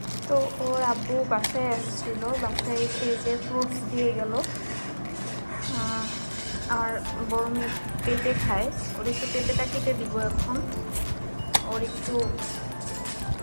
তো ওর আব্বু বাসায় আসছিল, বাসায় এসে যে ফ্রুটস দিয়ে গেল। আর বড় মেয়ে পেঁপে খায়, ওর একটু পেঁপেটা কেটে দিব এখন। ওর একটু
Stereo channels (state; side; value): inverted; both; correlation -1.00